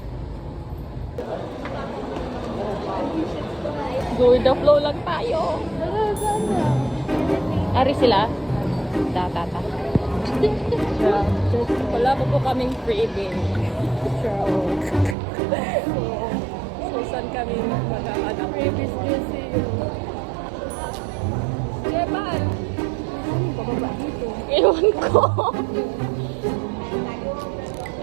Go with the flow lang tayo. Ari sila? Tata. Wala po kaming freebie. So saan kami magkakanak? Freebies kasi yun. Jeban! Bababa dito. Ewan ko. Oh my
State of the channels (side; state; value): left; drops out; at 15.2 s